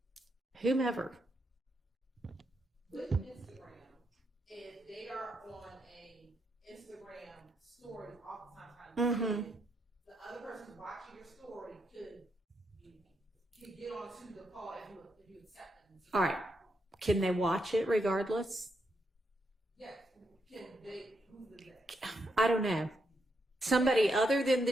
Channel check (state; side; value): normal; both; correlation 0.80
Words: whomever. With Instagram, if they are on a Instagram story, oftentimes the other person watching your story could get onto the call if you accept them. All right. Can they watch it regardless? Yes. Can they? Who's the next? I don't know. Somebody other than the